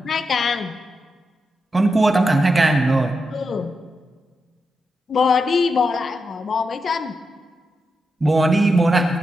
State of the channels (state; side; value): normal; both; correlation 0.86